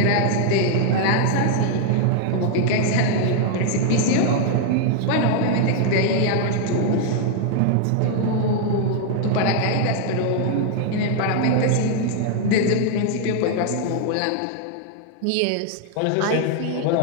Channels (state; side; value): different; both; correlation 0.00